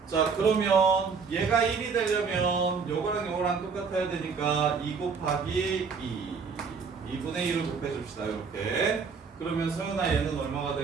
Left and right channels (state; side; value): quieter; left; 5.5 dB